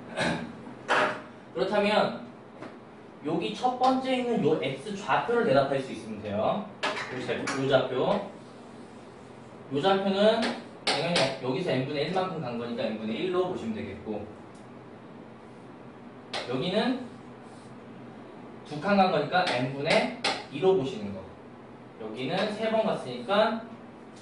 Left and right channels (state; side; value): identical; both; correlation 1.00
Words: 그렇다면 여기 첫 번째 있는 요 x좌표를 대답할 수 있으면 돼요. 요 좌표는 당연히 여기서 n분의 1만큼 간 거니까 n분의 1로 보시면 되겠고, 여기는 두 칸 간 거니까 n분의 2로 보시는 거. 여기는 3번 갔으니까